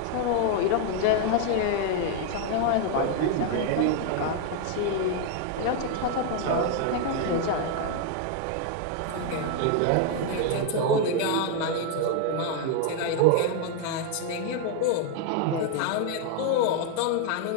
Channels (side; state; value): both; different; correlation 0.00